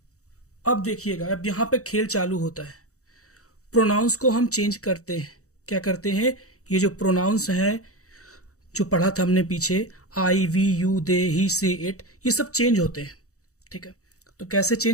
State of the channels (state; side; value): late; right; 0.65 ms